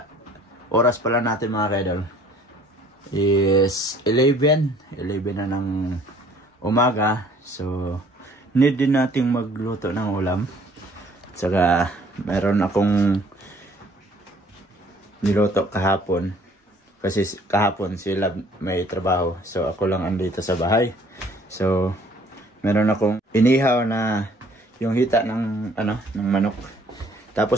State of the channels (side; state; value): both; normal; correlation 0.57